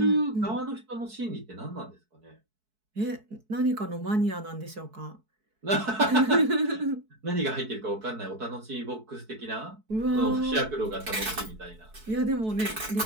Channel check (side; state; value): left; late; 4.6 ms